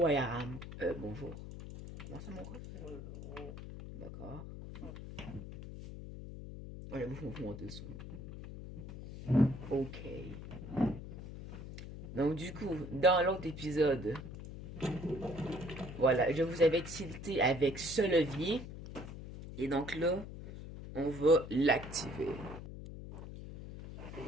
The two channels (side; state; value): left; noise; hum, 11 dB below the sound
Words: where I am. Bonjour. Comment ça mon ref? D'accord. Oh, j'avoue, faut monter le son. Ok. Donc du coup, dans l'autre épisode, voilà, je vous avais tilté avec ce levier. Et donc là, on va l'activer.